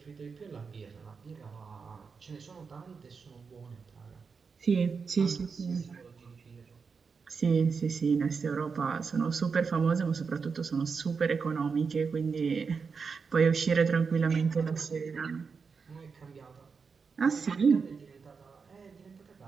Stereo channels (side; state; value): left; quieter; 5.3 dB